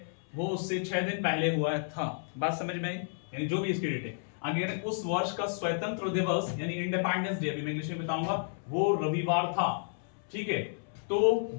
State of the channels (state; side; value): silent; right; 56 dB below the other